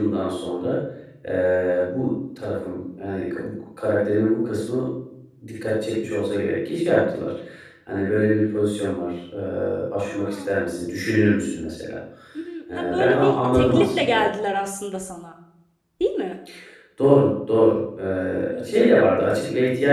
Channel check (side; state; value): both; identical; correlation 1.00